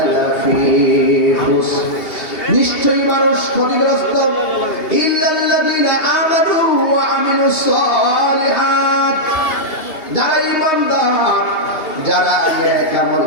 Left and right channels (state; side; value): late; right; 2.7 ms